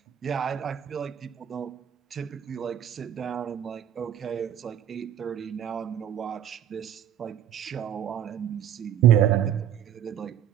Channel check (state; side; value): quieter; left; 10.0 dB